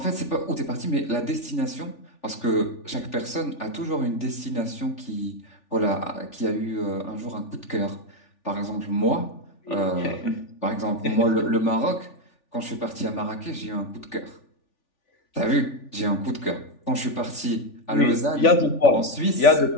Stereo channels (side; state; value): right; late; 3.4 ms